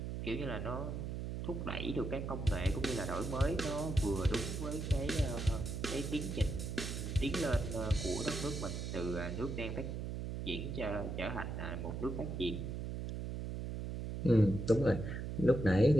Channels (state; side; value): noise; right; hum, 4 dB below the sound